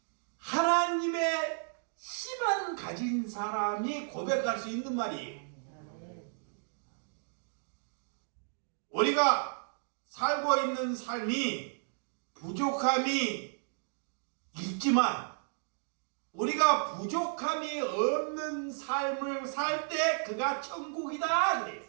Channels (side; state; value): left; silent; digital silence